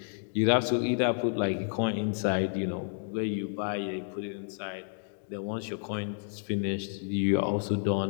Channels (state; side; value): silent; right; digital silence